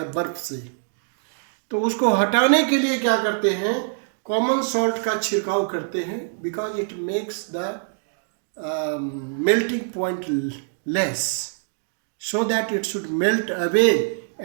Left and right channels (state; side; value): silent; left; digital silence